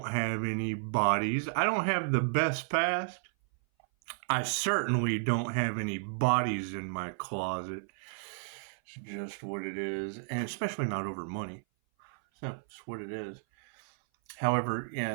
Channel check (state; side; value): silent; left; 56 dB below the other